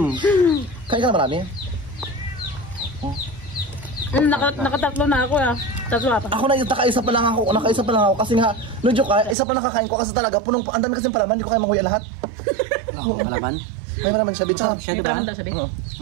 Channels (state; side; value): drops out; left; at 9.3 s